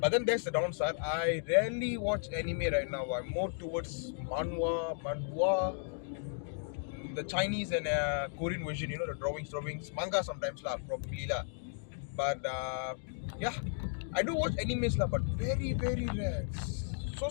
then there's the downside. I rarely watch anime right now. I'm more towards manhwa, the Chinese and Korean version, the drawings, manga sometimes lah, probably lah. But yeah, I do watch animes lah, but very, very rare. So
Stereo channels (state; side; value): silent; right; digital silence